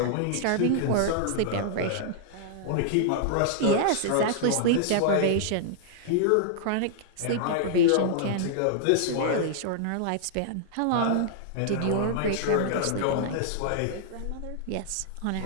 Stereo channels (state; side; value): different; both; correlation -0.01